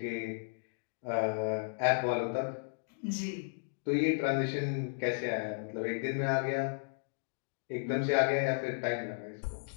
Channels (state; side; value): silent; right; digital silence